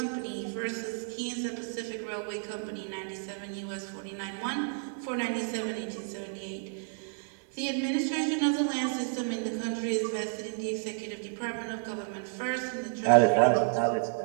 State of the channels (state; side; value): silent; left; digital silence